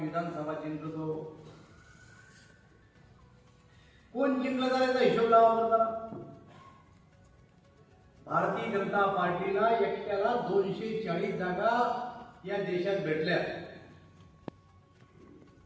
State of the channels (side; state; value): both; identical; correlation 1.00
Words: विधानसभा जिंकतो। कोण जिंकलं जाण्याचा हिशोब लावा जरा। भारतीय जनता पार्टीला एकट्याला 240 जागा या देशात भेटल्या।